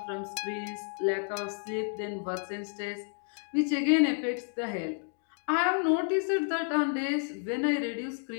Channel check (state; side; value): silent; right; 57 dB below the other